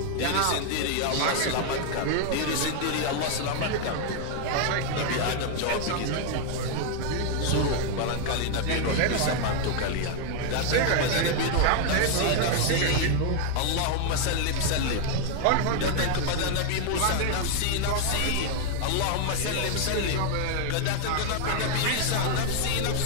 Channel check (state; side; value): different; both; correlation 0.00